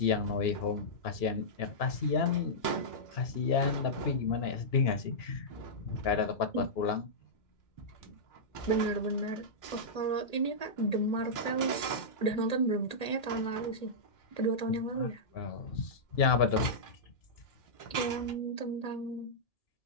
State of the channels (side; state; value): right; late; 2.3 ms